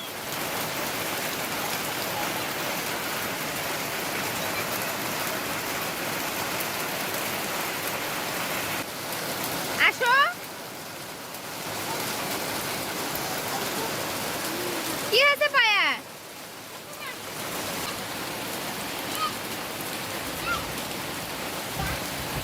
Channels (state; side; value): identical; both; correlation 1.00